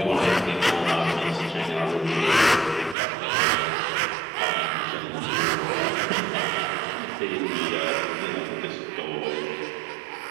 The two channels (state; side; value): drops out; left; at 3.0 s